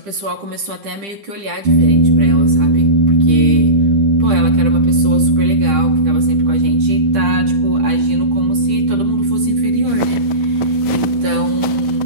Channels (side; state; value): left; late; 10 ms